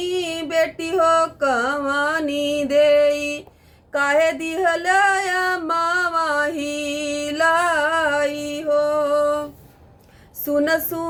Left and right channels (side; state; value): both; identical; correlation 1.00